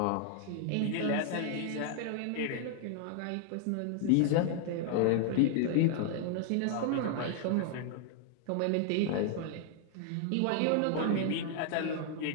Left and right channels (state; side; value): different; both; correlation 0.00